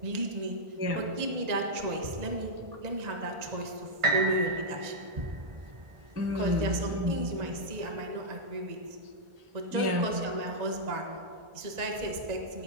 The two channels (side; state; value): left; late; 1.9 ms